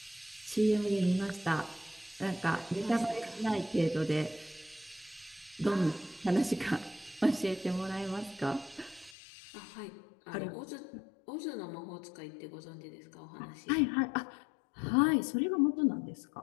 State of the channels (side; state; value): right; drops out; at 9.2 s